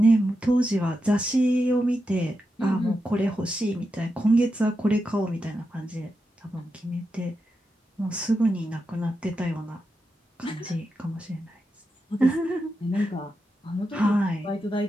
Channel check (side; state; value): both; normal; correlation 0.88